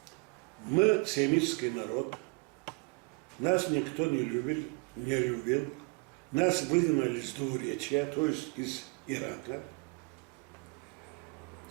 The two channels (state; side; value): quieter; left; 30.7 dB